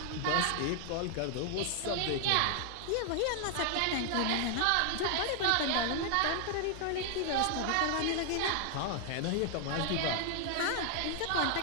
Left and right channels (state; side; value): different; both; correlation 0.00